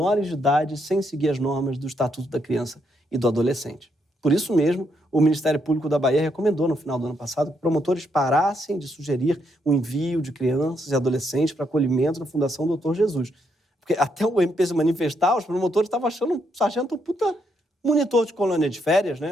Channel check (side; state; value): both; normal; correlation 0.77